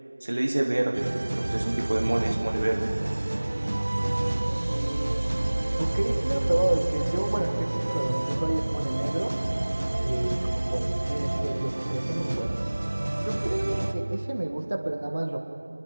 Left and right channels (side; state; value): both; inverted; correlation -1.00